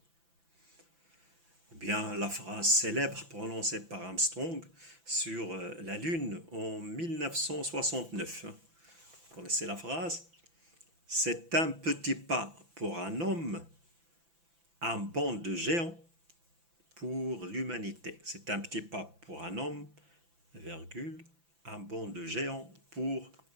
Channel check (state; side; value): late; left; 5.9 ms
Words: Ou bien la phrase célèbre prononcée par Armstrong sur la Lune en 1969. Vous connaissez la phrase? C'est un petit pas pour un homme, un bond de géant pour l'humanité. C'est un petit pas pour un homme, virgule, un bond de géant pour